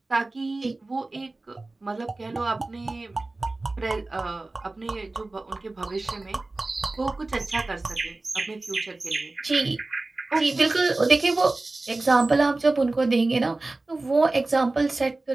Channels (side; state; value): left; quieter; 3.1 dB